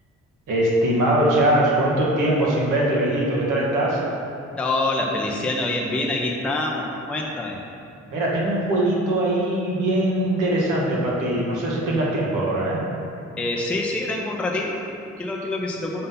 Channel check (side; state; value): both; normal; correlation 0.38